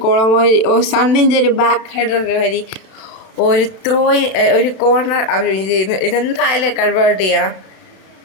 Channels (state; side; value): late; right; 32 ms